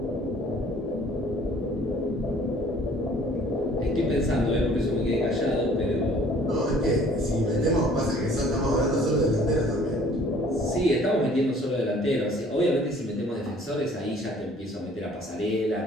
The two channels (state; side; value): normal; both; correlation 0.55